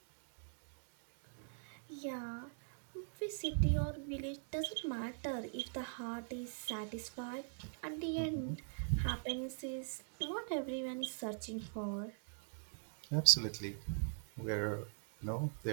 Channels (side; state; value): left; silent; digital silence